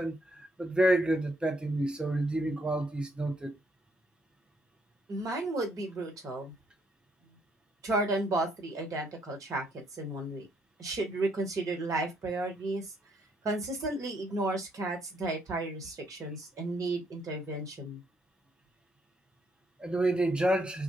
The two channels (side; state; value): both; normal; correlation 0.72